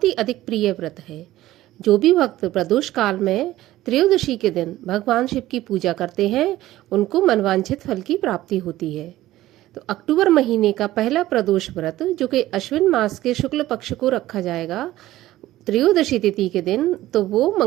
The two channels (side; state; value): left; quieter; 15.4 dB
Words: ही अधिक प्रिय व्रत है। जो भी भक्त प्रदोष काल में त्रयोदशी के दिन भगवान शिव की पूजा करते हैं उनको मनवांछित फल की प्राप्ति होती है। तो अक्टूबर महीने का पहला प्रदोष व्रत जो कि अश्विन मास के शुक्ल पक्ष को रखा जाएगा त्रयोदशी तिथि के दिन, तो वो